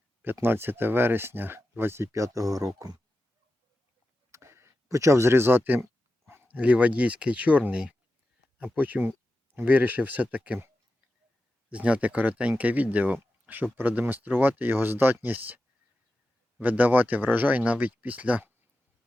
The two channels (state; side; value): normal; both; correlation 0.92